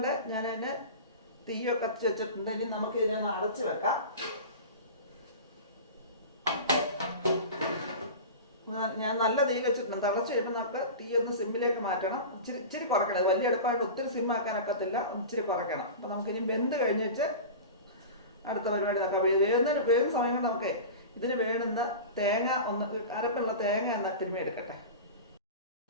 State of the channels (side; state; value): both; inverted; correlation -0.31